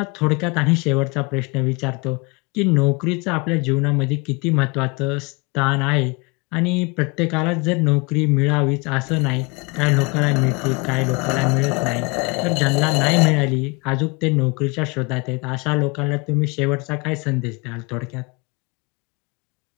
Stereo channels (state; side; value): quieter; right; 28.7 dB